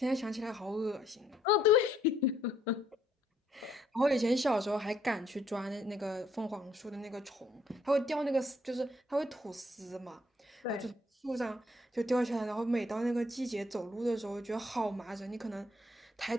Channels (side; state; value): both; normal; correlation 0.69